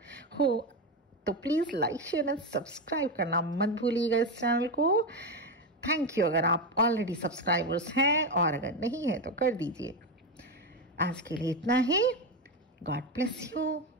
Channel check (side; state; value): both; normal; correlation 0.13